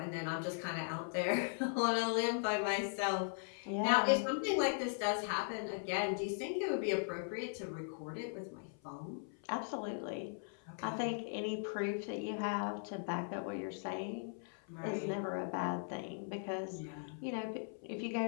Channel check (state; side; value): silent; right; 52 dB below the other